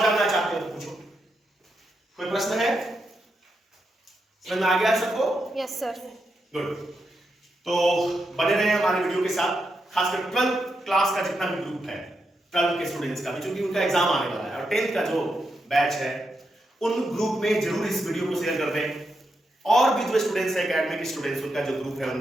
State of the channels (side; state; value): both; normal; correlation 0.84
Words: जानना चाहते हो तो पूछो। कोई प्रश्न है? समझ में आ गया सबको? Yes sir. गुड। तो बने रहे हमारे वीडियो के साथ। खासकर 12th क्लास का जितना भी ग्रुप है, 12 के स्टूडेंट्स का भी, क्योंकि उनका एग्जाम आने वाला है, और 10th का जो बैच है उन ग्रुप में जरूर इस वीडियो को शेयर कर दें। और भी जो स्टूडेंट्स है, एकेडमिक स्टूडेंट्स, उनका जो ग्रुप है